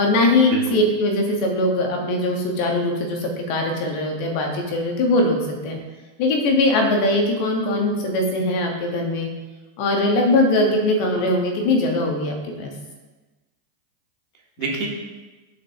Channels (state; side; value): late; right; 14 ms